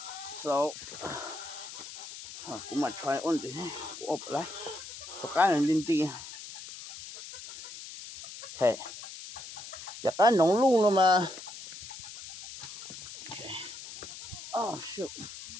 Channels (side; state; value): left; noise; hiss, 12 dB below the sound